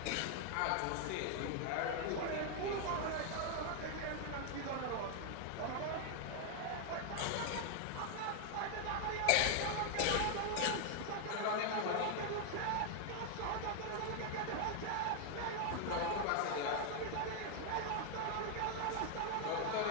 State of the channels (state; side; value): different; both; correlation 0.00